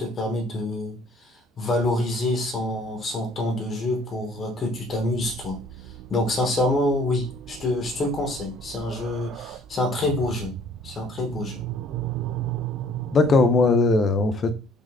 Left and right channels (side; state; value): both; normal; correlation 0.58